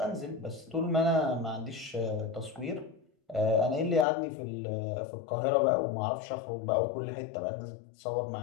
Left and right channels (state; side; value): drops out; right; at 4.0 s